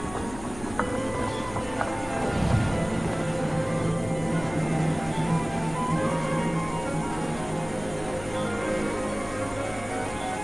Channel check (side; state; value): left; noise; hum, 15 dB below the sound